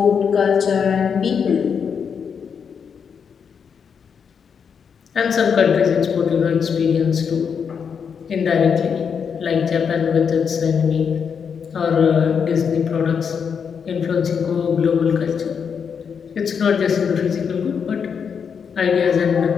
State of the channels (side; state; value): right; quieter; 6.7 dB